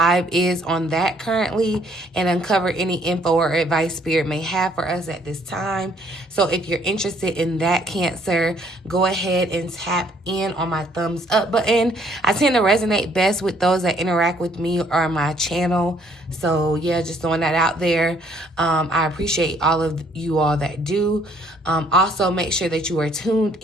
is on that currently and uncover any info or advice Spirit may have for us at this time. So if you're interested in that, Cancer, go ahead and tap in on my thumbs up button. I tend to resonate best with those that interact with me or my channel. So yeah, just throwing that out there. I appreciate all of you all that do. Also, make sure that you are tuned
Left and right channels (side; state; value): both; normal; correlation 0.64